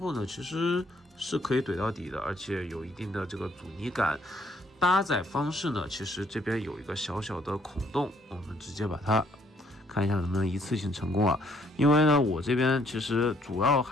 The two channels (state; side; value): normal; both; correlation 0.66